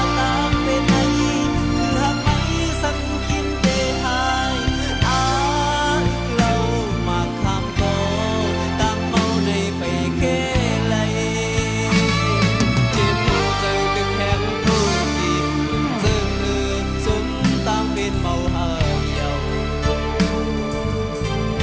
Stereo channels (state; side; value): identical; both; correlation 1.00